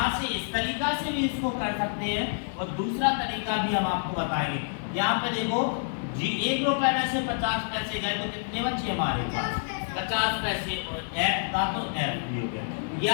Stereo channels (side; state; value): right; silent; digital silence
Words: से इस तरीका से भी इसको कर सकते हैं, और दूसरा तरीका भी हम आपको बताएंगे। यहाँ पे देखो जी 1 रुपए में से 50 पैसे गए तो कितने बचे हमारे पास, 50 पैसे, और f का तो f भी हो गया। या